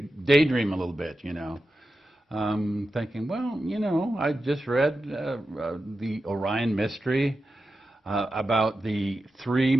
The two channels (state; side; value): normal; both; correlation 0.91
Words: a little bit, thinking, well, I just read the Orion Mystery about the 3